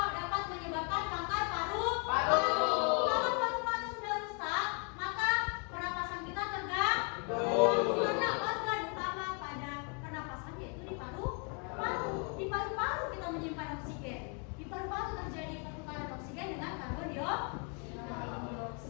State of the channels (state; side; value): quieter; right; 37.5 dB